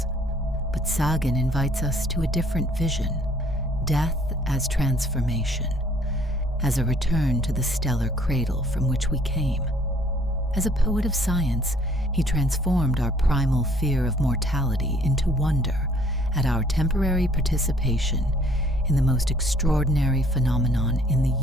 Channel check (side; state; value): both; normal; correlation 0.59